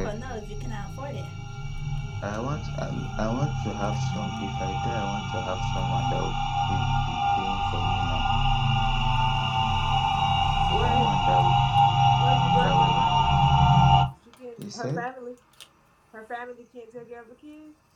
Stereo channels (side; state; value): both; identical; correlation 1.00